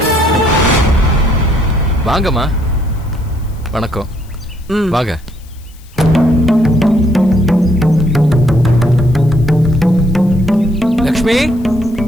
வாங்கம்மா. வணக்கம். வாங்க. லக்ஷ்மி,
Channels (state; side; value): noise; left; hiss, 27 dB below the sound